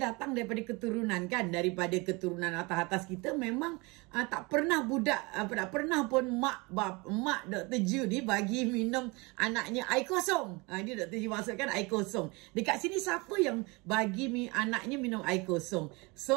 datang daripada keturunan kan, daripada keturunan atas-atas kita memang tak pernah tak pernah pun mak Dr. Ju ni bagi minum anaknya air kosong. Ini Dr. Ju maksudkan air kosong. Dekat sini siapa yang bagi anaknya minum air kosong?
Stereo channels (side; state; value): left; quieter; 26.4 dB